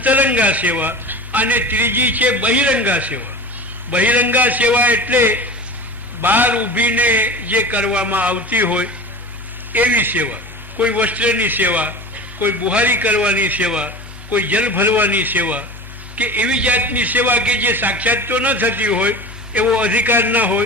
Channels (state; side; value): normal; both; correlation 0.33